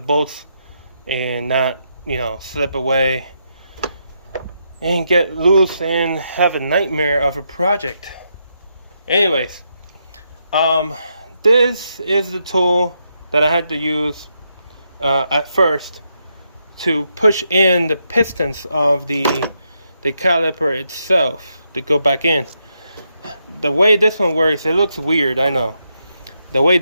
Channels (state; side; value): inverted; both; correlation -0.80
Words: and not, slip away and get loose and have a nightmare of a project. Anyways, this is the tool that I had to use at first to push in the pistons of the caliper itself to go back in. The way this one works, it looks weird, I know. The way